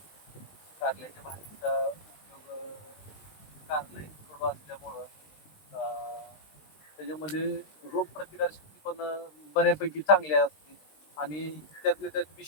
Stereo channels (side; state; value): right; late; 20 ms